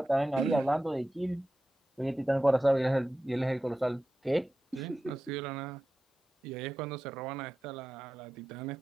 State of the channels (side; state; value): both; normal; correlation 0.92